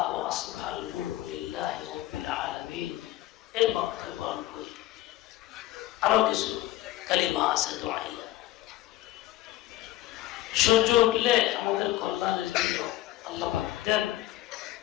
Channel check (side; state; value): right; quieter; 15.5 dB